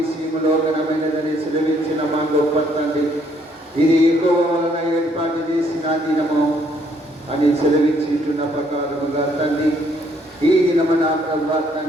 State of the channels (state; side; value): normal; both; correlation 0.67